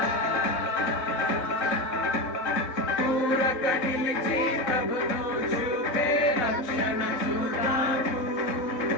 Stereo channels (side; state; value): right; late; 4.0 ms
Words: పూరక నిలిచి ప్రభును చూపే రక్షణ చూద్దాము